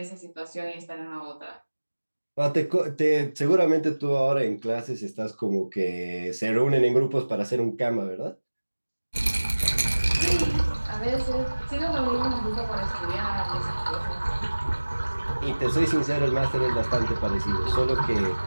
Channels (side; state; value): both; inverted; correlation -1.00